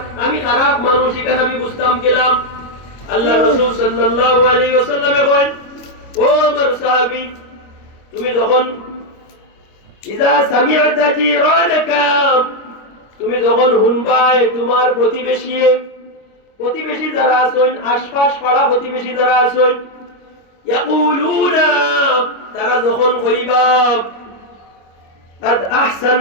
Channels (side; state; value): right; late; 25 ms